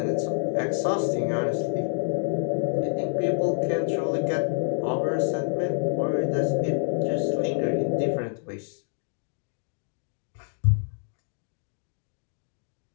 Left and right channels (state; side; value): silent; right; 59 dB below the other